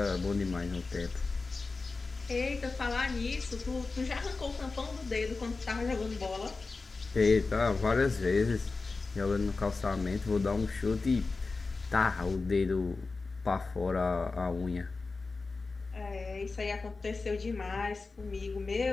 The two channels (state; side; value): quieter; right; 3.9 dB